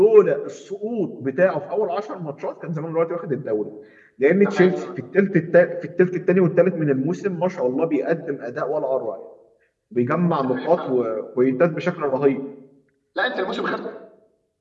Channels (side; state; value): both; identical; correlation 1.00